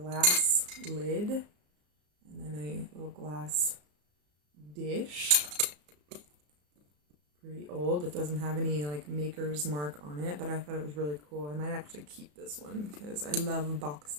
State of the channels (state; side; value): late; left; 34 ms